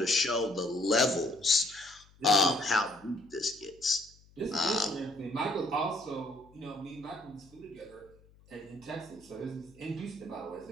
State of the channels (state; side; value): noise; left; hum, 27 dB below the sound